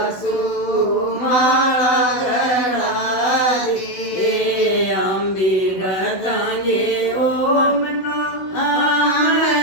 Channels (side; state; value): right; late; 16 ms